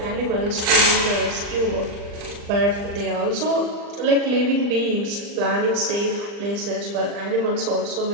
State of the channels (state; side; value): late; left; 40 ms